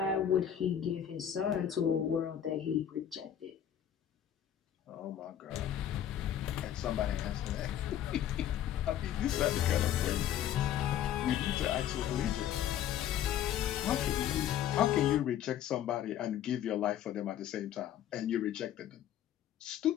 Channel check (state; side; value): quieter; right; 10.4 dB